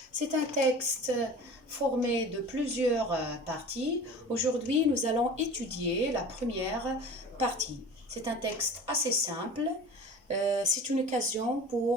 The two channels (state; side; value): normal; both; correlation 0.38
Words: C'est un texte formé de plusieurs parties. Aujourd'hui, nous allons étudier la première partie. C'est un texte assez simple. C'est une occasion